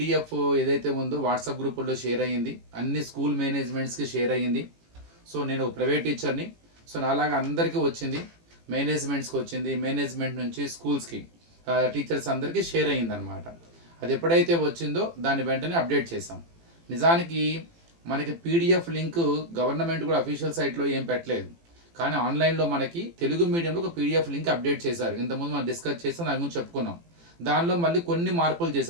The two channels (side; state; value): left; late; 18 ms